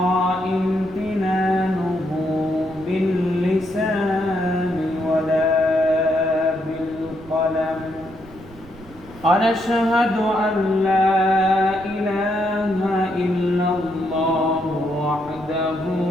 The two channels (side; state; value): right; noise; rumble, 21 dB below the sound